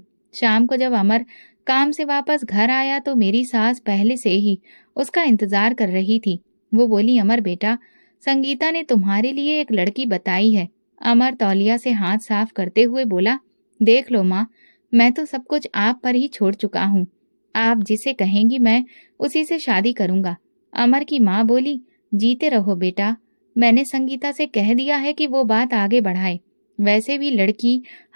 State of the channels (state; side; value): inverted; both; correlation -1.00